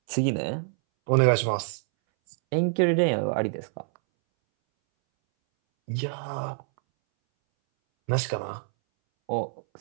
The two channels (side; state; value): left; silent; 61 dB below the other